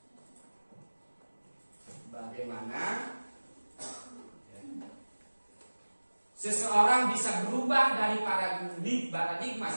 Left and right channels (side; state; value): both; inverted; correlation -1.00